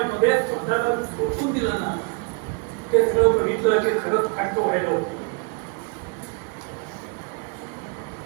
स्वतःला झोकून दिलं ना, ते सगळं बघितलं की खरंच हक्क व्हायला होतं.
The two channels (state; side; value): quieter; left; 34.3 dB